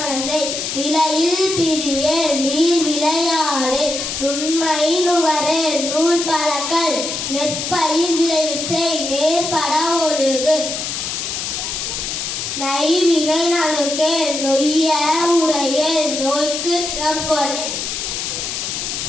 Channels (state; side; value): noise; left; hiss, 4 dB below the sound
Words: நிலையில் பிரியேல், நீர் விளையாடே, நுண்மை நுகரே, நூல் பழக்கல், நெற்பயிர் விளைவு செய், நேர்பட ஒழுகு, நைவினை நணுக்கேல், நொய்ய உரையேல், நோய்க்கு இடம் கொடு,